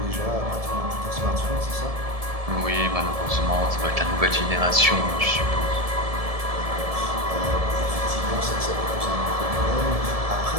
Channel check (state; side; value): late; left; 1.7 ms